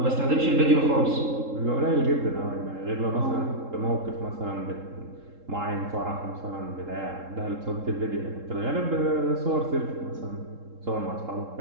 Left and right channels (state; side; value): late; left; 3.7 ms